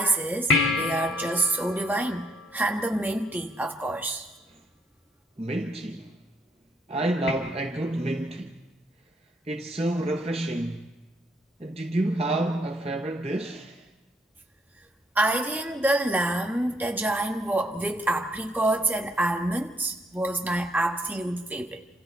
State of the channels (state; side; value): normal; both; correlation 0.70